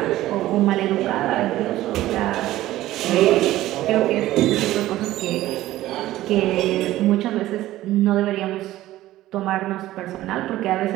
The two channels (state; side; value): quieter; left; 15.3 dB